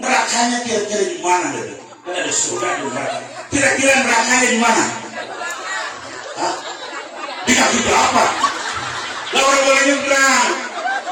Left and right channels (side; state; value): both; identical; correlation 1.00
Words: nerakanya kira-kira di mana? Kan ada surga di neraka. Kira-kira nerakanya di mana? Hah? Di kaki bapak. Lah orang boleh nyebrang.